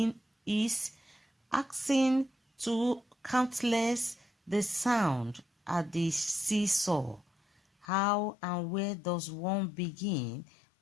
asking to countless the sound at the seesaw. How and where does one begin,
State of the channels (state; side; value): drops out; right; at 7.9 s